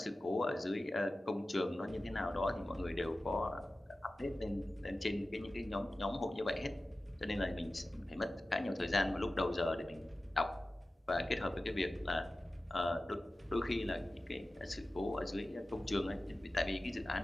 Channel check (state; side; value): normal; both; correlation 0.95